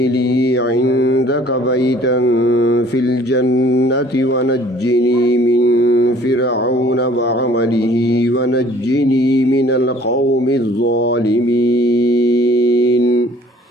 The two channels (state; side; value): normal; both; correlation 0.55